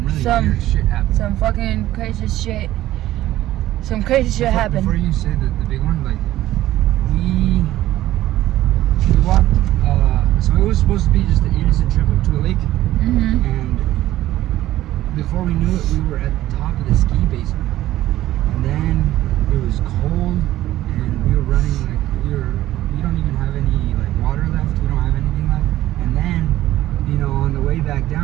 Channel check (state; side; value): quieter; left; 14.6 dB